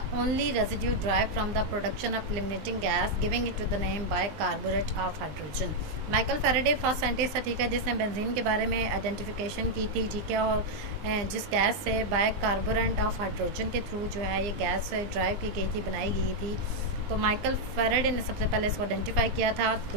only residue derived from the production of eliminating gas, giving it to the name bicarbonate of hydrogen. Michael Faraday first scientist था, ठीक है, जिसने benzene के बारे में identification की थी, ठीक है, और जिस गैस से बाइकार्बोनेट ऑफ हाइड्रोजन के थ्रू जो है ये गैस ड्राइव की गई थी, बनाई गई थी, तो माइकल फैराडे ने सबसे पहले इसको आइडेंटिफाई किया था.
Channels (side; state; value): left; late; 20 ms